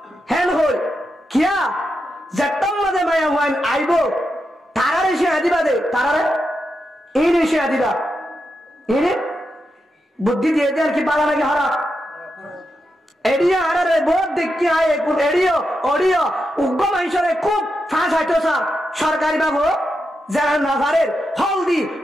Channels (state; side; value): normal; both; correlation 0.86